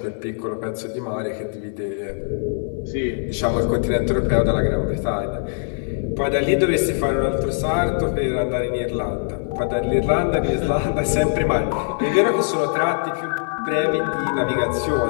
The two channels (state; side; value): silent; right; 61 dB below the other